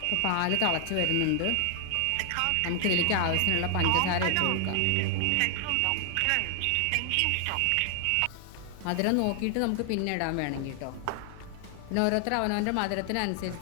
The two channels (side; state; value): both; different; correlation 0.00